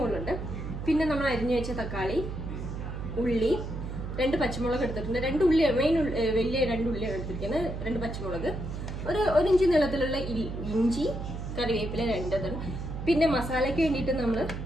പിന്നെ നമ്മൾ അരിഞ്ഞു വെച്ച തക്കാളി, ഉള്ളി, 2 പച്ചമുളക് എടുത്തിട്ടുണ്ട്. 2 ഉള്ളി, മെയിൻ വലിയ 2 ഉള്ളിയാണ് എടുത്തിരിക്കുന്നത്. 2 പച്ചമുളക്, ഒരു ഇഞ്ചി നീളത്തിലുള്ള ഇഞ്ചി, കറിവേപ്പില 2. പിന്നെ മസാലയ്ക്ക് വേണ്ടിയിട്ട് നമ്മൾ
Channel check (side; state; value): right; noise; hum, 6 dB below the sound